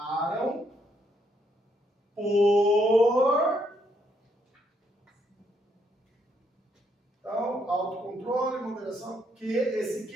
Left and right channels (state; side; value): normal; both; correlation 0.74